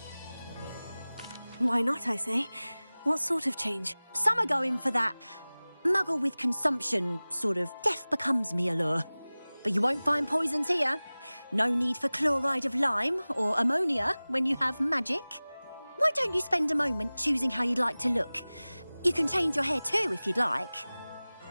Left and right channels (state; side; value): inverted; both; correlation -0.99